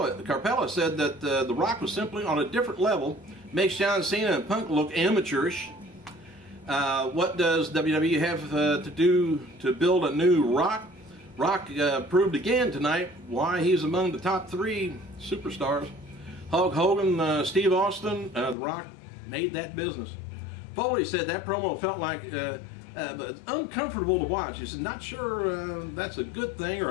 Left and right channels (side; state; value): right; drops out; at 18.6 s